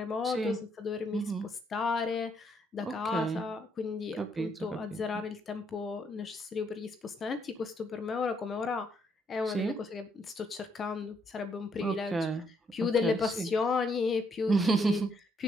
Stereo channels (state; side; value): normal; both; correlation 0.73